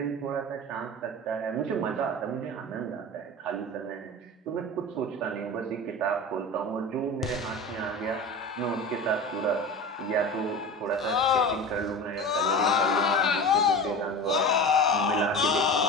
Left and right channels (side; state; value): both; normal; correlation 0.31